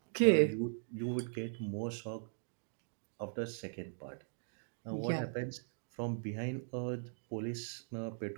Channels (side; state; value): left; silent; digital silence